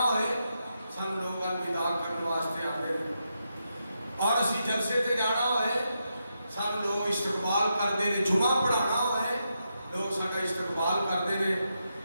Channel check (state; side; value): inverted; both; correlation -0.84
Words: ہوئے سانو لوگ الوداع کرن واسطے آتے ہیں اور اسی جلسے تے جانا ہوئے سانو لوگ استقبال کرتے ہیں جمعہ پڑھانا ہوئے لوگ ساڈا استقبال کرتے ہیں